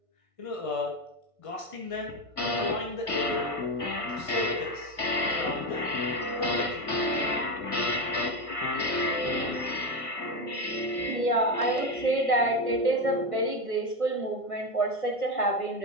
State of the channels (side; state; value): right; late; 1.5 ms